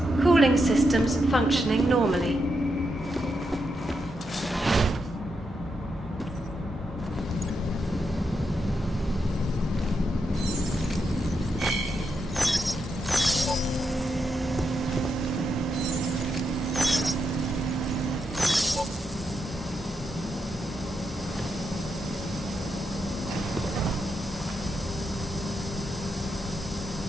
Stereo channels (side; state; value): both; normal; correlation 0.83